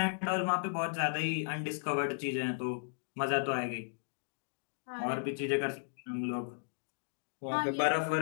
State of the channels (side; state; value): right; silent; digital silence